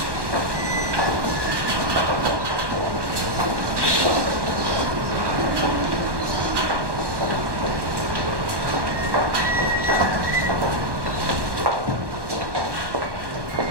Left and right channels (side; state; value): left; late; 1.2 ms